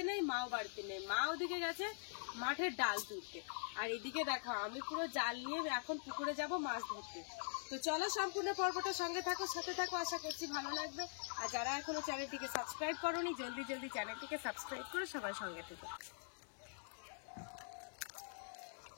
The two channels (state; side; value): silent; right; digital silence